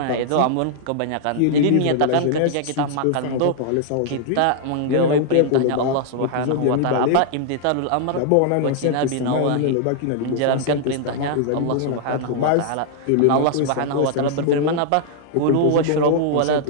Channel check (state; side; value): different; both; correlation -0.01